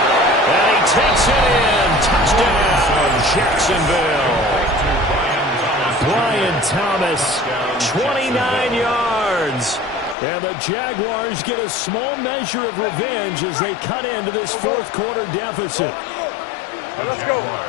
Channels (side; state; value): right; drops out; at 10.2 s